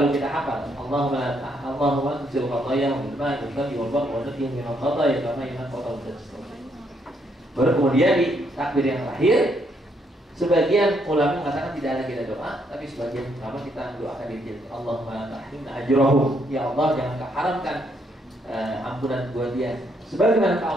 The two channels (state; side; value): normal; both; correlation 0.73